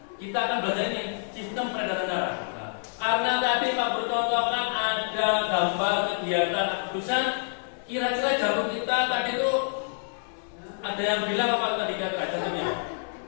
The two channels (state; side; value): silent; right; digital silence